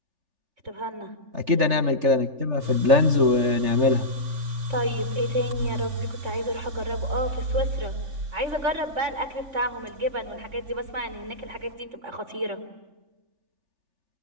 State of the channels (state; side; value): late; left; 3.3 ms